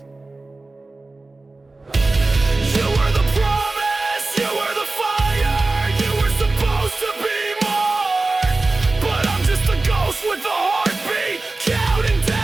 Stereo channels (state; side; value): quieter; left; 3.3 dB